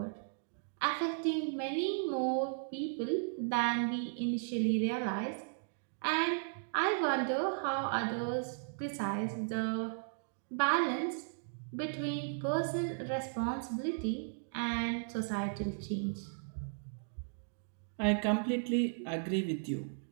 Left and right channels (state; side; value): silent; left; digital silence